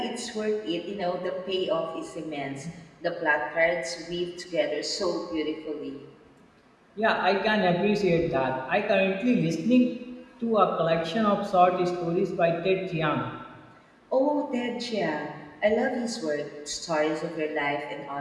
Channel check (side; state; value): both; identical; correlation 1.00